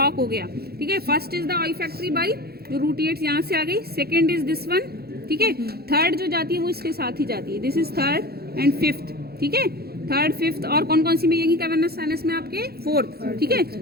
हो गया, ठीक है। First is the olfactory by, जो रूट एड्स यहाँ से आ गई, सेकेंड इज दिस वन, ठीक है। थर्ड जो जाती है वो इसके साथ ही जाती है, this is third and fifth, ठीक है। थर्ड फिफ्थ और कौन कौन सी में, यही कैवर्नस साइनस में आपके फोर्थ, ठीक है।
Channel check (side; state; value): left; late; 0.46 ms